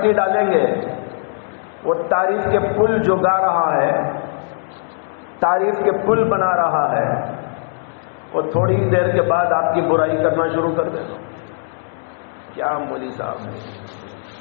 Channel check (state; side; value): silent; right; digital silence